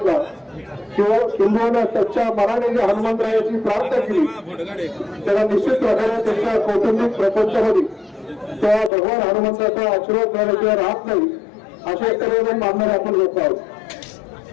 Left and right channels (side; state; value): right; drops out; at 8.9 s